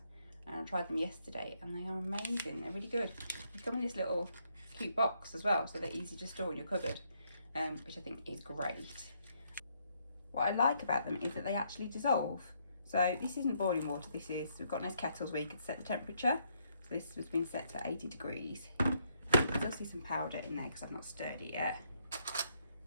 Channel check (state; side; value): inverted; both; correlation -0.73